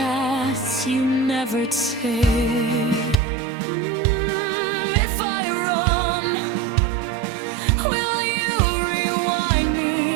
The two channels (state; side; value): drops out; left; at 3.2 s